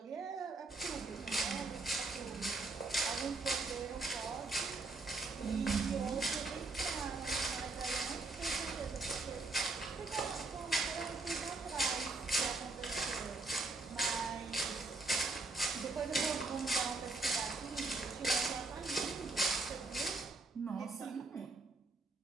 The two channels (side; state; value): left; quieter; 3.4 dB